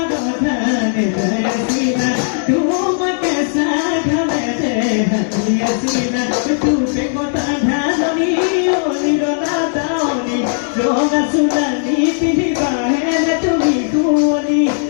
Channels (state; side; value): silent; right; digital silence